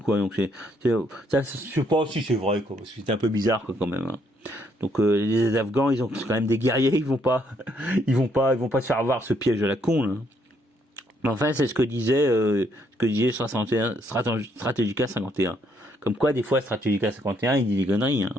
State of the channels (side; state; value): both; normal; correlation 0.71